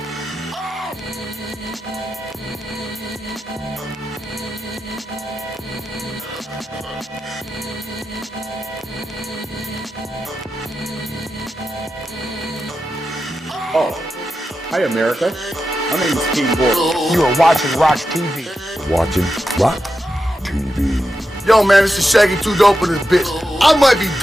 Oh, hi America. My name is King Boy. You are watching RoX-TV. Watching RoX-TV. Yo, man, this is Shaggy Too Dope in this bitch. I might be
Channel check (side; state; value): both; normal; correlation 0.89